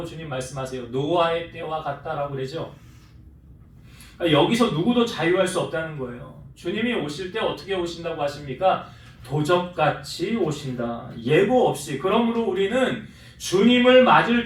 주님 말씀하세요? 노아의 때와 같다라고 그러죠. 그러니까 여기서 누구도 자유할 수 없다는 거예요. 주님이 오실 때 어떻게 오신다고 하십니까? 도적같이 오신다. 예고 없이. 그러므로 우리는 주님을 맞을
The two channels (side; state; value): both; identical; correlation 1.00